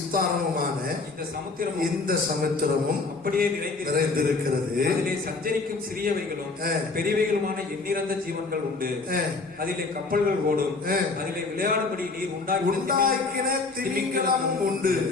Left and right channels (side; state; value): right; quieter; 3.9 dB